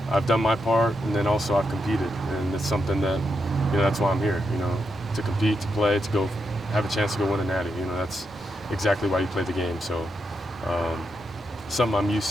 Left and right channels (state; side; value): normal; both; correlation 0.83